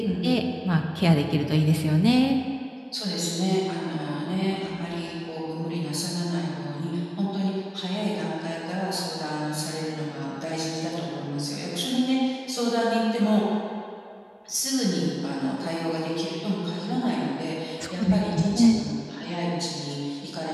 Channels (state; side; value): identical; both; correlation 1.00